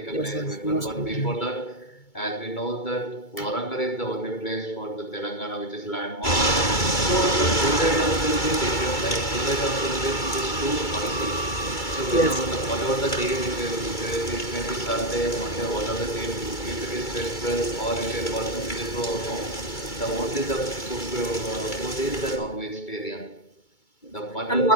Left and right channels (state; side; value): late; right; 2.2 ms